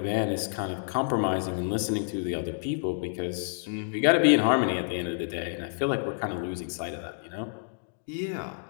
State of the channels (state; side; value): silent; right; digital silence